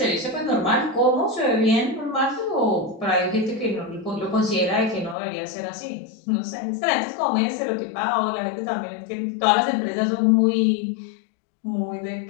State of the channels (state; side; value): drops out; right; at 5.2 s